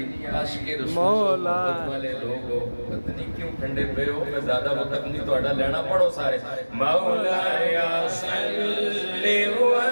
عاشق رسول محبت والے لوگو پتہ نہیں کیوں ٹھنڈے پہ ہو میں زیادہ وقت نہیں تو اڈا لینا پڑھو سارے مولا یا صلی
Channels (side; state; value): both; inverted; correlation -1.00